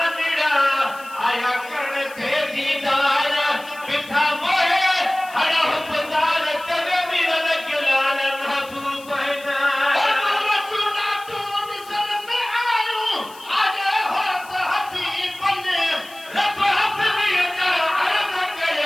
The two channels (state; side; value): noise; left; hiss, 21 dB below the sound